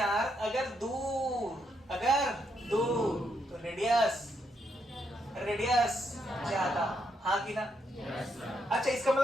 अगर दूर तो रेडियस ज्यादा, हाँ कि ना? अच्छा, इसका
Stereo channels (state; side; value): normal; both; correlation 0.78